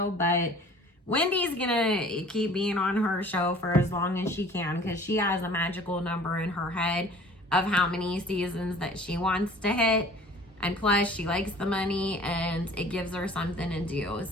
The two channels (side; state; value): both; normal; correlation 0.49